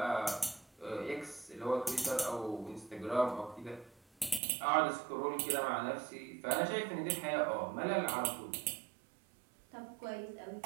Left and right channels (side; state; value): left; drops out; at 4.4 s